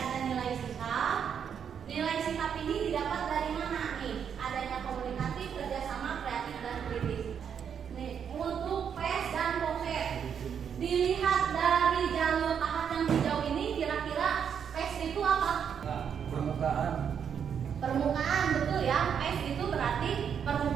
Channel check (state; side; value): quieter; left; 7.7 dB